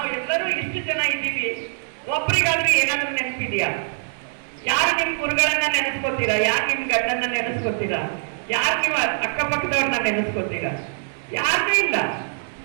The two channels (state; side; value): silent; left; digital silence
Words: ಇಷ್ಟು ಜನ ಇದ್ದೀವಿ, ಒಬ್ರಿಗಾದ್ರೂ ಏನಾದ್ರೂ ನೆನಪಿದೆಯಾ? ಯಾರು ನಿಮ್ ಗುರುಗಳನ್ನ ನೆನೆಸ್ಕೋತೀರಾ? ಯಾರು ನಿಮ್ ಗಂಡನ್ನ ನೆನೆಸ್ಕೋತೀರಾ? ಯಾರು ನೀವು ಅಕ್ಕಪಕ್ಕದವ್ರನ್ನ ನೆನೆಸ್ಕೋತೀರಾ? ಯಾರೂ ಇಲ್ಲ.